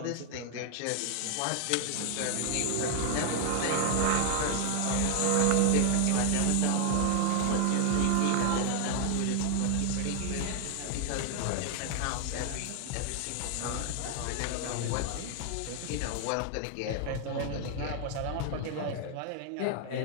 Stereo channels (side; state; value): both; different; correlation 0.00